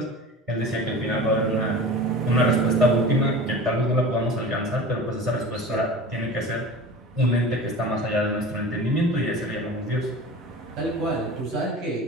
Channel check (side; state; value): both; normal; correlation 0.36